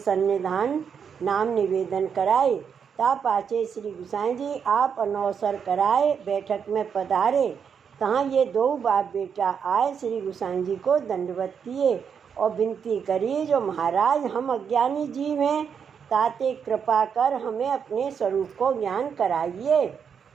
नाम निवेदन कराए। ता पाछे श्री गोसाई जी आप अनौसर कराए बैठक में पधारे। तहाँ ये दो बाप बेटा आए, श्री गोसाई जी को दंडवत किए और विनती करी, जो महाराज हम अज्ञानी जीव हैं, ताते कृपा कर हमें अपने स्वरूप को ज्ञान कराइए।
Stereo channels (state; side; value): quieter; left; 7.0 dB